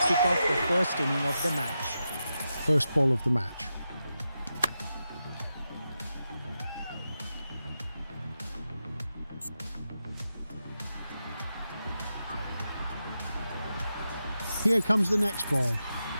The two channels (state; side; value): inverted; both; correlation -0.89